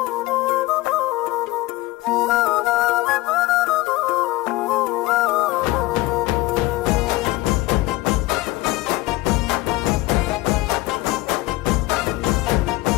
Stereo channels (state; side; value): quieter; right; 19.2 dB